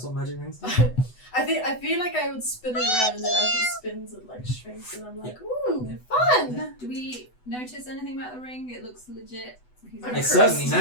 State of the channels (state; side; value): late; right; 8.0 ms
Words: what magic rings do. I feel like I would spin it around and then as he spins it like shrinks and I'm like, ooh, Yeah. fun. Do we notice anything about the ring? It looks legit. He's I'm It's cursed. certainly